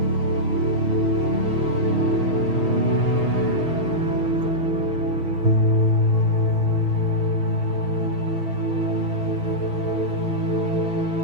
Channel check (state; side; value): late; left; 6.3 ms